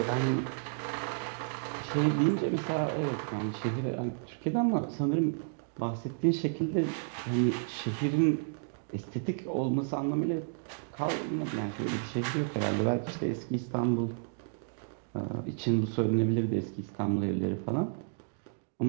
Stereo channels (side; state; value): left; silent; digital silence